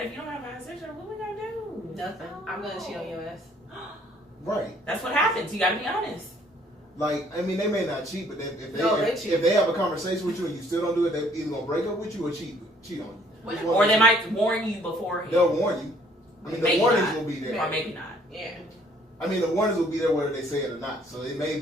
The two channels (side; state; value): both; normal; correlation 0.61